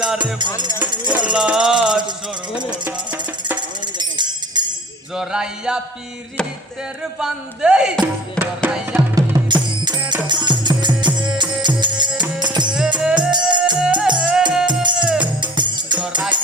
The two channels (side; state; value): both; normal; correlation 0.45